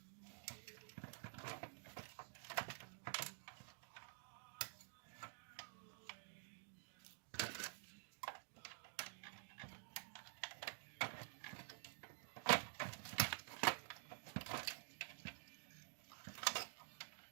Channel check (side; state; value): left; silent; digital silence